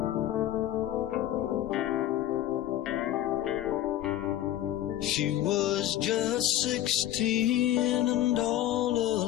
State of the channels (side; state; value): right; quieter; 13.0 dB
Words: was just 16 and all